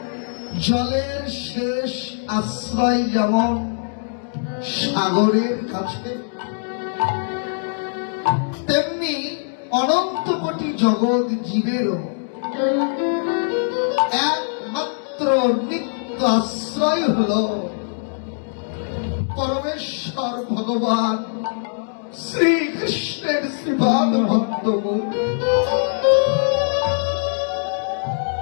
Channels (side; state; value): right; silent; digital silence